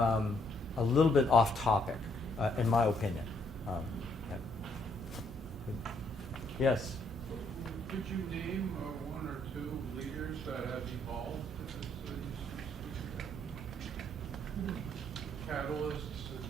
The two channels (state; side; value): normal; both; correlation 0.70